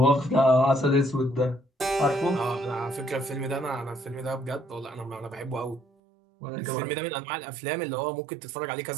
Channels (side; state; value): left; drops out; at 5.9 s